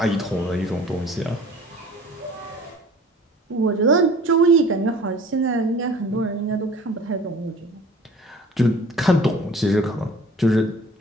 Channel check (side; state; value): both; normal; correlation 0.47